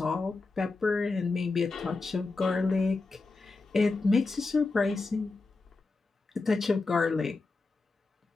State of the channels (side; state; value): right; quieter; 3.7 dB